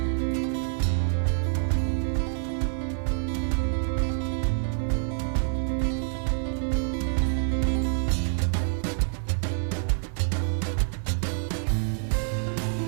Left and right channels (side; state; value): left; silent; digital silence